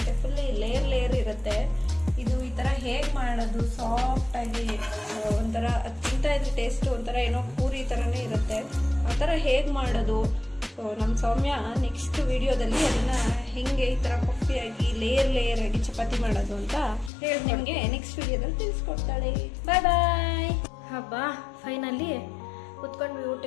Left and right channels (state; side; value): drops out; right; at 17.1 s